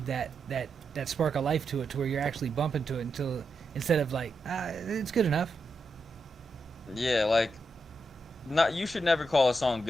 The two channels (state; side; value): normal; both; correlation 0.85